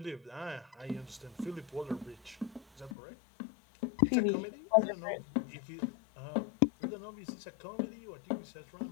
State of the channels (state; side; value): drops out; right; at 3.0 s